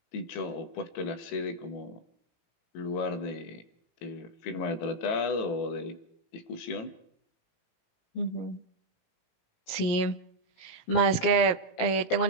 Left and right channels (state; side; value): late; right; 17 ms